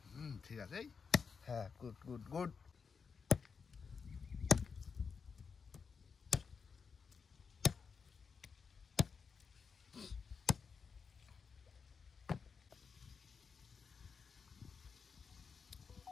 ঠিক আছে। হ্যাঁ গুড গুড গুড।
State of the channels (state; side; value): quieter; right; 5.6 dB